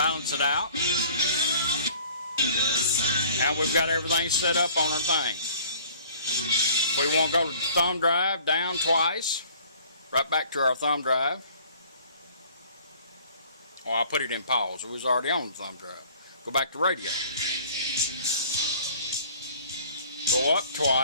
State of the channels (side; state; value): both; inverted; correlation -0.52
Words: it out. Now we've got everything set up on our thing. We want to go to the thumb drive, down twice, right back to our thumb drive. Oh, I'll put it in pause. It was already on the thumb drive. Go back to radio. Go up